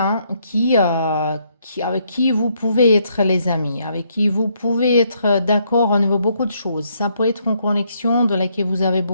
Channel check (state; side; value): inverted; both; correlation -0.72